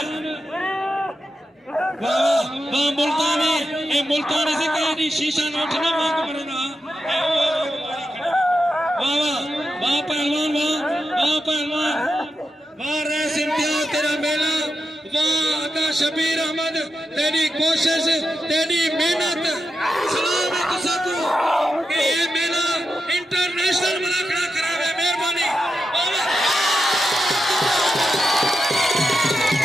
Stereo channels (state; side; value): normal; both; correlation 0.88